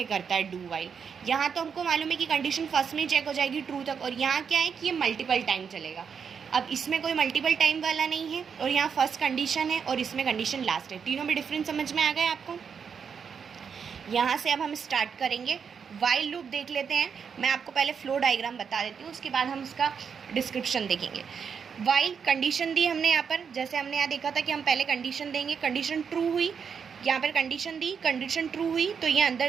करता है डू वाइल. यहाँ तो हमको मालूम है कि कंडीशन फर्स्ट में ही चेक हो जाएगी ट्रू तक, और यहाँ क्या है कि ये मल्टीपल टाइम चलेगा. अब इसमें कोई मल्टीपल टाइम वाला नहीं है, और यहाँ फर्स्ट कंडीशन है और इसमें कंडीशन लास्ट है. तीनों में डिफरेंस समझ में आ गया आपको? यहाँ से अब हम स्टार्ट करेंगे. वाइल लूप देख लेते हैं. मैं आपको पहले फ्लो डायग्राम बता देती हूँ, उसके बाद हम उसका डिस्क्रिप्शन देखेंगे. वाइल कंडीशन दी हमने यहाँ पर, जैसे हमने यहाँ देखा था कि हम पहले कंडीशन देंगे, कंडीशन ट्रू हुई, यहाँ पर कंडीशन दी, कंडीशन ट्रू हुई तो ये अंदर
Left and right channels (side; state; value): left; quieter; 6.6 dB